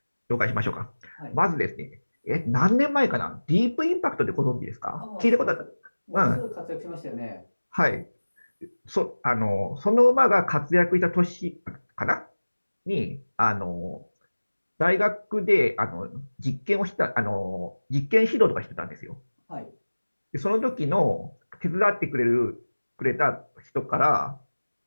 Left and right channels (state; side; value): inverted; both; correlation -1.00